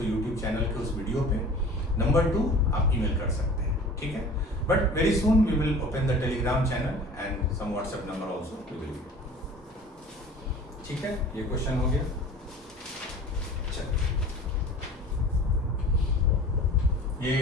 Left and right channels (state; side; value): normal; both; correlation 0.43